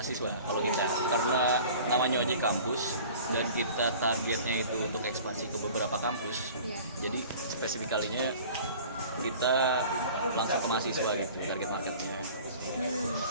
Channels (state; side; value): inverted; both; correlation -0.44